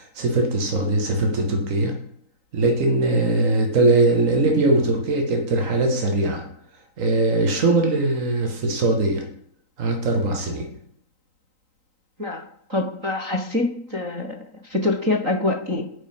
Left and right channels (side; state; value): left; late; 3.9 ms